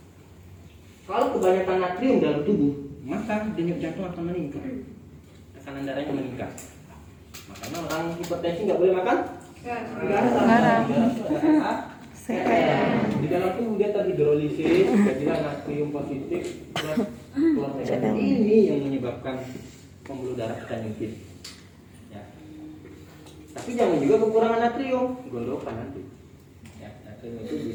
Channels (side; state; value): both; identical; correlation 1.00